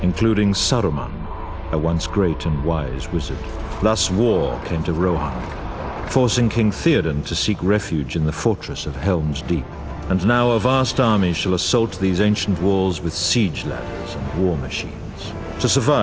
including Saruman, a once great and wise wizard. Thus war came to Rohan, forcing King Theoden to seek refuge in the fortress of Helm's Deep. And now a vast army shall assault these ancient walls with siege ladders and war machines. To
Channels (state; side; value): identical; both; correlation 1.00